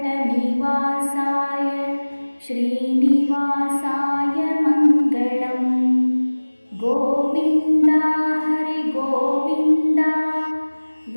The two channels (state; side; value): inverted; both; correlation -1.00